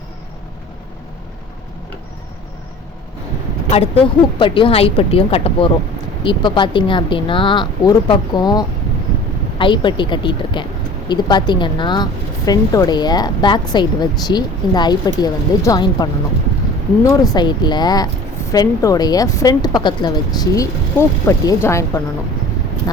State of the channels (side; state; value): both; normal; correlation 0.43